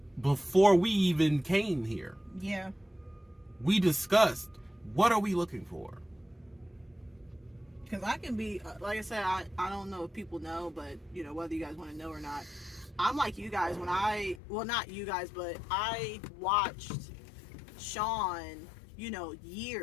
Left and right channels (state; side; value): drops out; right; at 14.4 s